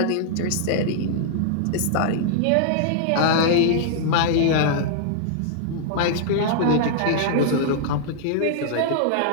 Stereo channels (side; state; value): both; different; correlation -0.01